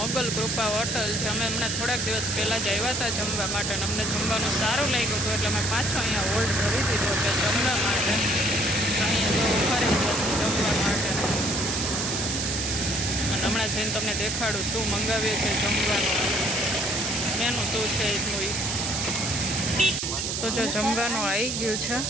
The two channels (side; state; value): right; noise; hiss, 1 dB below the sound